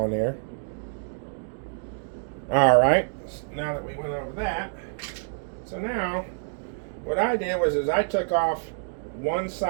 there. Alright, now that we went over that, so now what I did was I took off one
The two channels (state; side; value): silent; left; digital silence